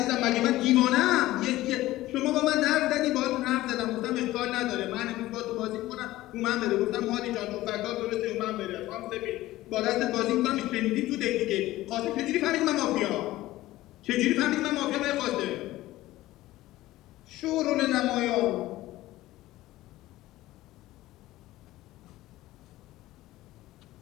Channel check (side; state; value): right; quieter; 16.6 dB